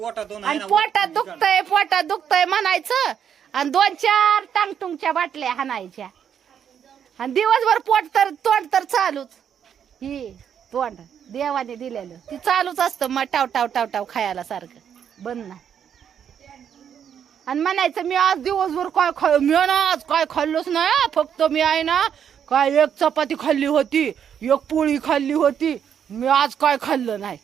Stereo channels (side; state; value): left; quieter; 8.4 dB